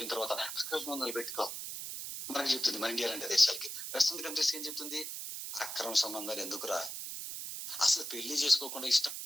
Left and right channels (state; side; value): noise; right; hiss, 6 dB below the sound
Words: తర్వాత అక్రమ సంబంధాలు పెట్టుకో. మనకి చెప్తుంది మన ఇండియా లాంటి దేశాలకి, వెస్టర్న్ కంట్రీస్ ఏం చెప్తుంది? అక్రమ సంబంధాలు ఎందుకురా, అసలు పెళ్లి చేసుకోకుండా ఇష్టం